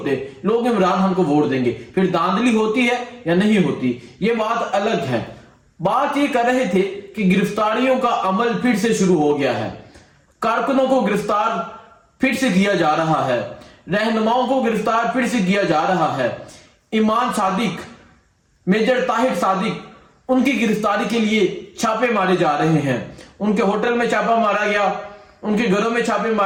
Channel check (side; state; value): both; identical; correlation 1.00